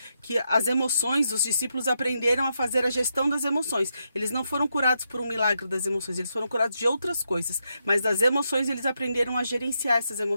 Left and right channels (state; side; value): inverted; both; correlation -0.83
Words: que as emoções, os discípulos aprenderam a fazer a gestão das emoções. Eles não foram curados por um milagre das emoções, eles foram curados de outras coisas. Mas das emoções, eles aprenderam a gerenciar essas